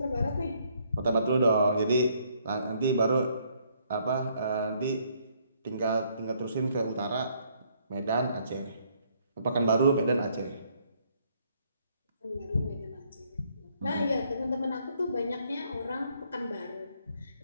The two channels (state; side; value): inverted; both; correlation -0.68